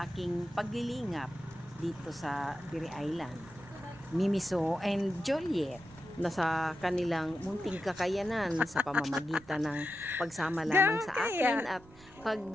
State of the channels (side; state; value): right; noise; rumble, 23 dB below the sound